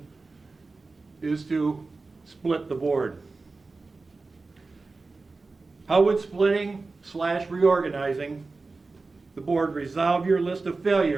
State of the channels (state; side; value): quieter; left; 3.8 dB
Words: is to split the board? How would splitting / reorganizing the board resolve your list of